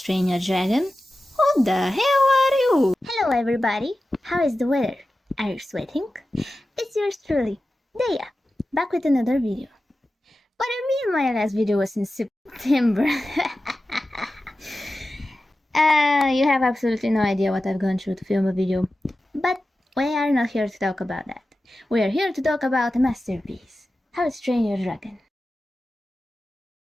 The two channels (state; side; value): normal; both; correlation 0.94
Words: Train Your Dragon? Who the hell are you? Hello everybody. How is the weather? Are you sweating? It's yours truly, Daya, back with another video. What I mean, my last video was in September. You have absolutely no idea what I've gone through to film a video. But we are not here to talk about that. We are here to talk about a masterpiece, How to Train Your Dragon.